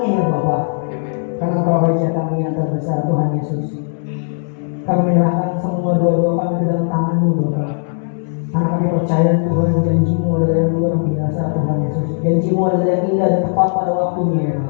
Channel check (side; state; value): right; silent; 68 dB below the other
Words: ya Bapak. Karena Engkau Raja kami yang terbesar Tuhan Yesus. Kami menyerahkan semua doa-doa kami ke dalam tangan-Mu Bapak. Karena kami percaya Tuhan, janji-Mu adalah yang luar biasa Tuhan Yesus. Janji-Mu adalah yang indah dan tepat pada waktunya ya